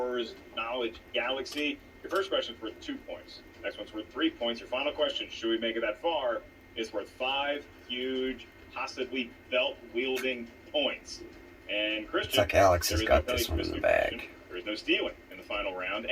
Knowledge Galaxy. Your first question's worth 2 points. Next one's worth 3 points. Your final question, should we make it that far, is worth 5 huge, possibly belt-wielding points. And Christian, It's like Alex has there is got no this one in the question. bag. There is no stealing in the final round.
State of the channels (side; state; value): both; identical; correlation 1.00